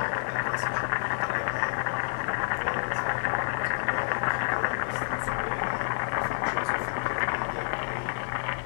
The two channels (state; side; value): silent; right; 59 dB below the other